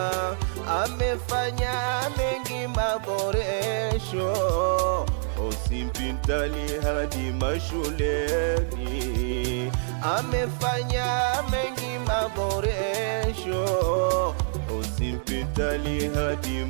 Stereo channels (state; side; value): silent; left; digital silence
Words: Amefanya mengi maboresho, hospitali hadi mashuleni. Amefanya mengi maboresho, hospitali hadi